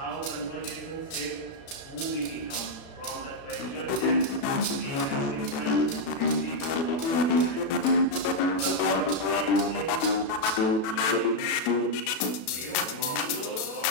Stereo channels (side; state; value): right; late; 36 ms